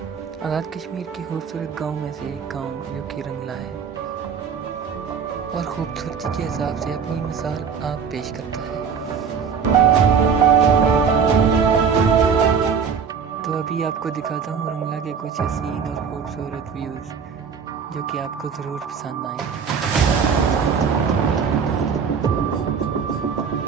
आज़ाद कश्मीर के खूबसूरत गांव में से एक गांव जो कि रंगला है और खूबसूरती के हिसाब से अपनी मिसाल आप पेश करता है। तो अभी आपको दिखाता हूँ रंगला के कुछ हसीन और खूबसूरत व्यूज़ जो कि आपको ज़रूर पसंद आएंगे।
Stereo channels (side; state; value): left; quieter; 6.5 dB